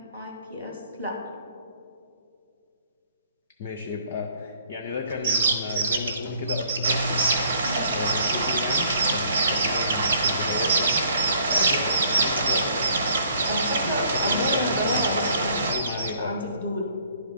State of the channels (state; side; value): inverted; both; correlation -0.60